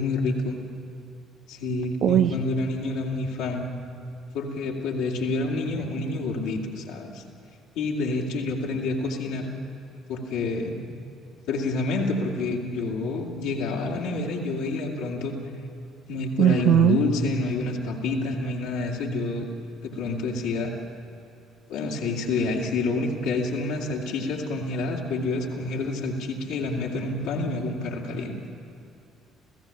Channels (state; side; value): normal; both; correlation 0.49